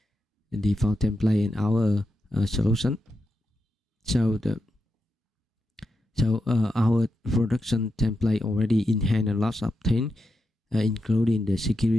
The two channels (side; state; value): both; normal; correlation 0.86